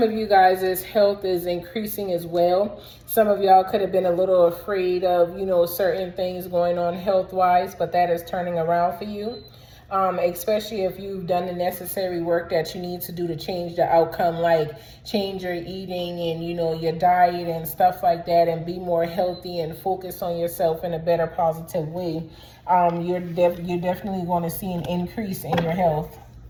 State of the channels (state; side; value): identical; both; correlation 1.00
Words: of you guys' health is increasing as well. Some of y'all could have been a little afraid of, you know, certain things going on health-wise, but that is turning around for you. Especially if you've done the necessary work that you need to do to change the outcome, like change your eating and, you know, your diet and stuff like that, and be more healthy and focus on yourself in a better, positive way. You're definitely going to see an increase in your health.